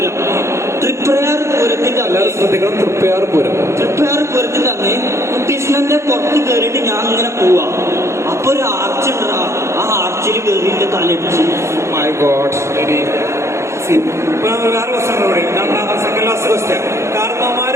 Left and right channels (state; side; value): late; left; 0.13 ms